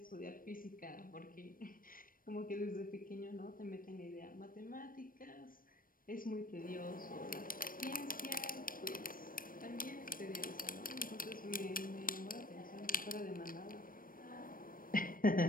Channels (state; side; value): late; right; 0.41 ms